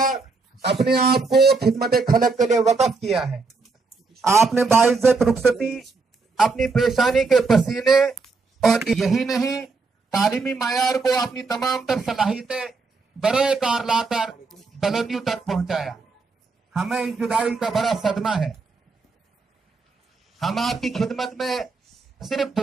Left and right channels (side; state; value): left; quieter; 4.2 dB